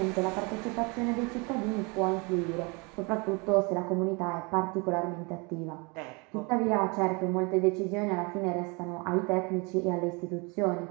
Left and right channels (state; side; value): quieter; left; 29.7 dB